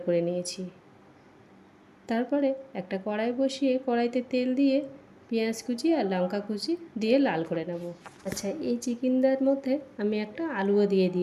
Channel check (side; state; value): both; identical; correlation 1.00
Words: করে নিয়েছি। তারপরে একটা কড়াই বসিয়ে কড়াইতে তেল দিয়ে পেঁয়াজ কুচি আর লঙ্কা কুচি দিয়ে লাল করে নেব। আচ্ছা, এই চিকেনটার মধ্যে আমি একটা আলুও দিয়ে